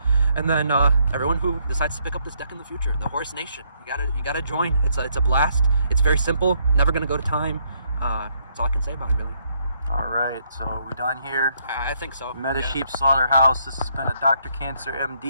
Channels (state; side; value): inverted; both; correlation -0.72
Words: And then everyone who decides to pick up this deck in the future, the Horus Nation, you gotta join. It's a blast. It's very simple. Never gonna go to time. That's all I can say about it, really. All right, so we're done here. I think so. Meta Yeah. Sheep Slaughterhouse. This has been a Dr. Cancer